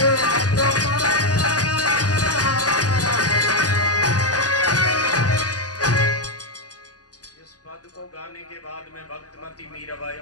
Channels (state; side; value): late; right; 0.68 ms